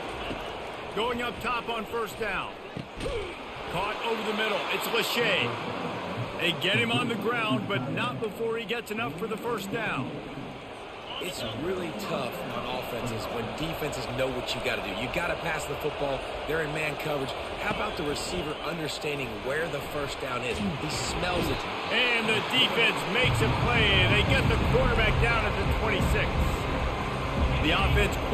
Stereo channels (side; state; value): both; identical; correlation 1.00